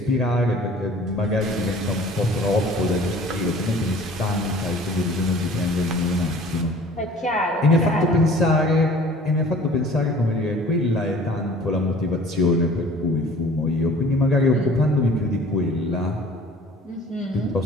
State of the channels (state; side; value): normal; both; correlation 0.48